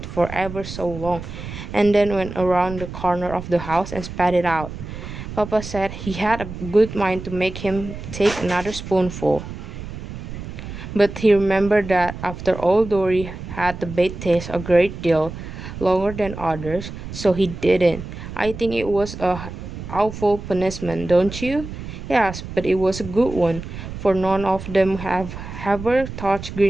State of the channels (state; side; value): noise; right; rumble, 10 dB below the sound